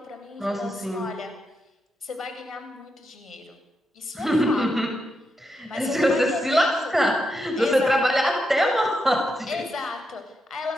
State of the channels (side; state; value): both; normal; correlation 0.84